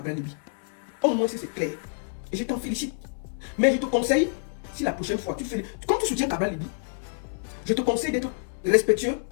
Libi. Au moins, c'est clair. Et je t'en félicite. Mais je te conseille, si la prochaine fois, comme tu soutiens Cabral Libi, je te conseille d'être respectueux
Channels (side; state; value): right; silent; 60 dB below the other